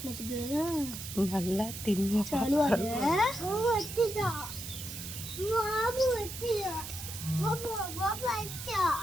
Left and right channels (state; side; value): noise; right; hiss, 9 dB below the sound